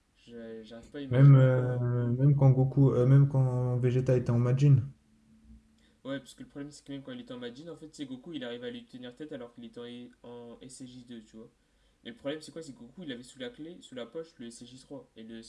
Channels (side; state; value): both; identical; correlation 1.00